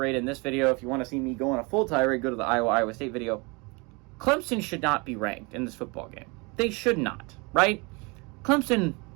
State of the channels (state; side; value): quieter; left; 28.7 dB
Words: in this video. If you want to see me go on a full tirade, go to the Iowa State video. Clemson should not be ranked in this football game. They should not, right? Clemson